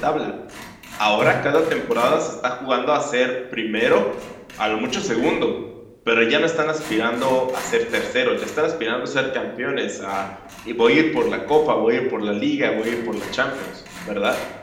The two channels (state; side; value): identical; both; correlation 1.00